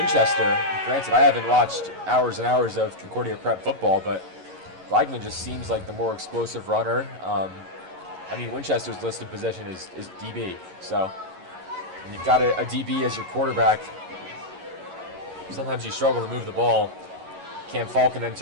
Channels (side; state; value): left; late; 11 ms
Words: Granted, I haven't watched hours and hours of Concordia prep football, but Blagman just seems like the more explosive runner. I mean, Winchester's listed position is DB, so when you've got a DB as your quarterback, sometimes you struggle to move the ball. Cam Falcon